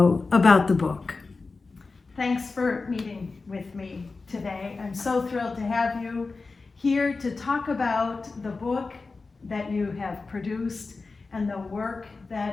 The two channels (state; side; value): quieter; right; 4.0 dB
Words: about the book. Thanks for meeting with me today. I'm so thrilled to have you here to talk about the book that you have produced and the work